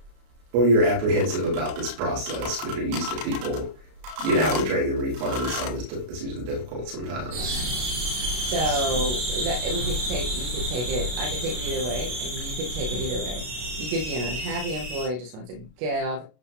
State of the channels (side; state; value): left; late; 32 ms